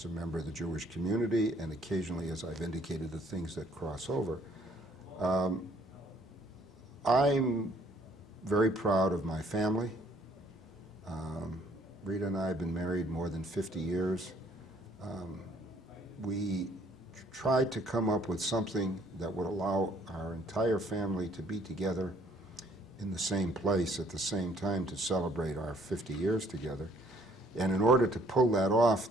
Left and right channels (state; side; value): normal; both; correlation 0.62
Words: a member of the Jewish community, and occasionally, as I've indicated, the things that cross over. I'm very proud of my family. Rita and I have been married more than 50 years. We tried to come up with something that would allow our entire family to be together in the same place at the same time to celebrate our 50 years together. And in order to pull that off